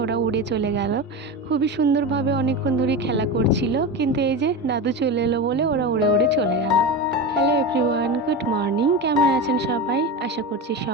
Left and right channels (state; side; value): normal; both; correlation 0.23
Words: ওরা উড়ে চলে গেল। খুবই সুন্দরভাবে অনেকক্ষণ ধরে খেলা করছিল, কিন্তু এই যে দাদু চলে এলো বলে ওরা উড়ে উড়ে চলে গেল। Hello everyone, good morning. কেমন আছেন সবাই? আশা করছি